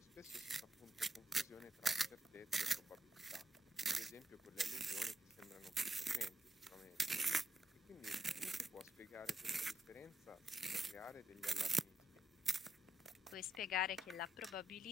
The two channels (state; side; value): normal; both; correlation 0.83